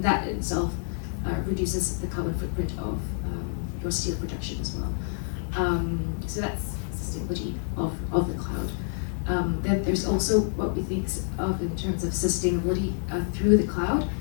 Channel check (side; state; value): right; silent; 60 dB below the other